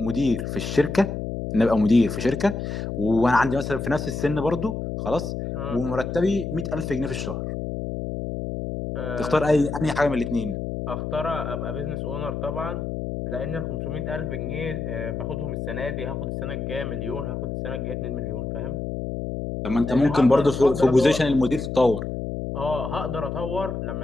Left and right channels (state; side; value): noise; left; hum, 4 dB below the sound